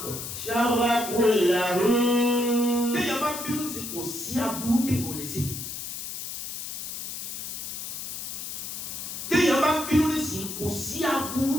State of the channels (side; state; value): left; noise; hiss, 7 dB below the sound